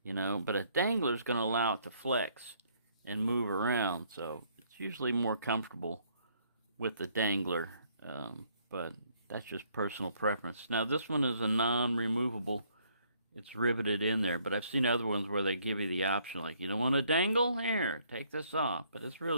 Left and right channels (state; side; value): inverted; both; correlation -0.66